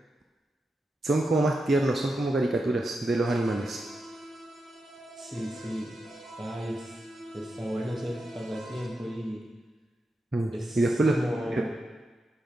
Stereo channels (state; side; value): normal; both; correlation 0.87